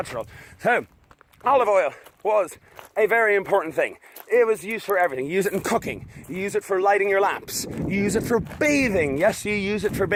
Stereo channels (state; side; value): identical; both; correlation 1.00